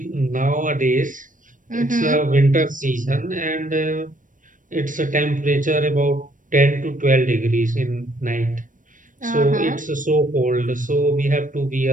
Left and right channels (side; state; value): left; late; 0.38 ms